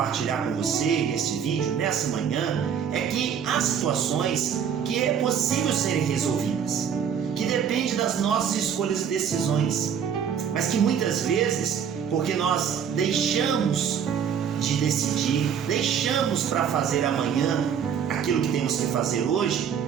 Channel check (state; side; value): quieter; left; 7.8 dB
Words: com você neste vídeo, nessa manhã, é que há situações que é possível serem resolvidas, que depende das nossas escolhas e decisões, mas que muitas vezes, porque nós deixamos de decidir, deixamos para fazer amanhã aquilo que temos que fazer hoje,